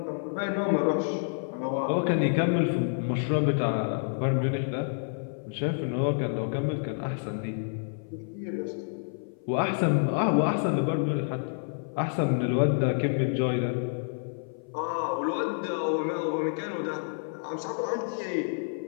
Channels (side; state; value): right; silent; 56 dB below the other